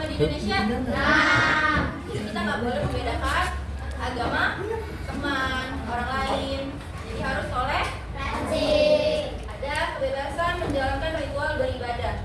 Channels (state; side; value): identical; both; correlation 1.00